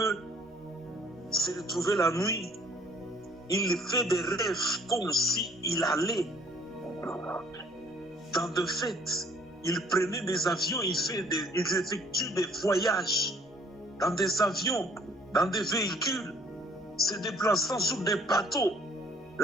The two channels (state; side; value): normal; both; correlation 0.58